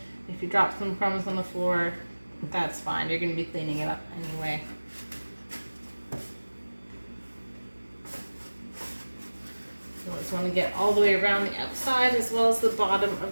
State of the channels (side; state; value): both; inverted; correlation -1.00